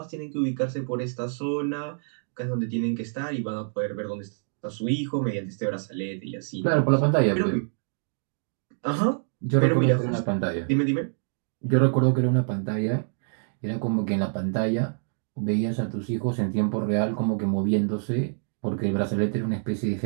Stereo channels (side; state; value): left; silent; digital silence